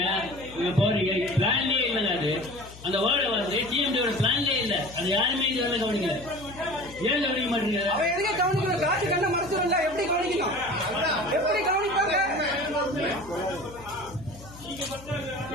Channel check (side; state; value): left; noise; hum, 18 dB below the sound